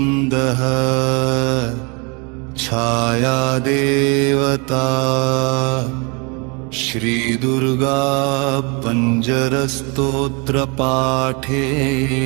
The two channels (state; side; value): quieter; left; 31.3 dB